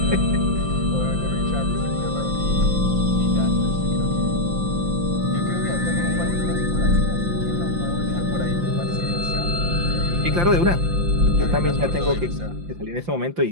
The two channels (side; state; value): left; late; 5.8 ms